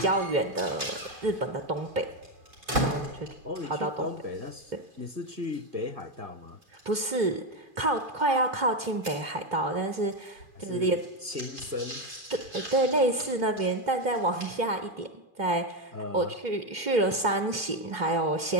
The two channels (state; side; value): late; left; 2.5 ms